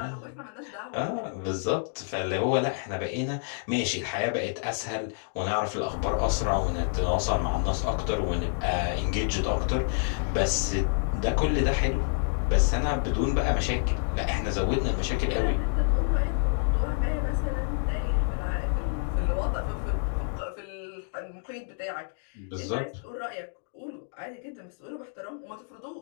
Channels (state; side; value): silent; right; digital silence